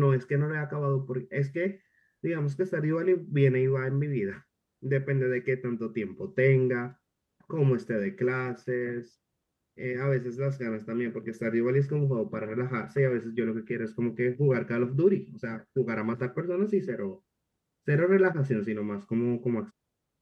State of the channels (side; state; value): both; identical; correlation 1.00